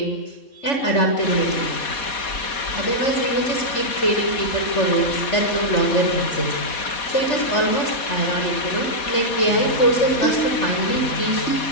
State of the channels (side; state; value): right; late; 4.2 ms